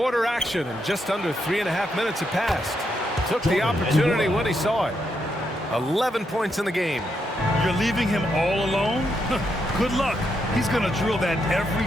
action, and just under 3.5 minutes have passed. Took the opportunity when he saw it. 11 points in the game. You're leaving him all alone? Good luck. He's going to drill that every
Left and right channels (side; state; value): both; normal; correlation 0.80